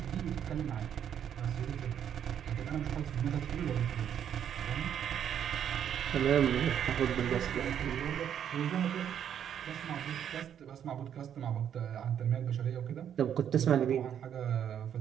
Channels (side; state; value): left; quieter; 9.2 dB